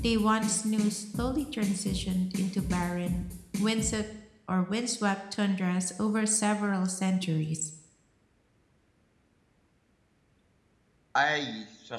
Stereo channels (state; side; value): identical; both; correlation 1.00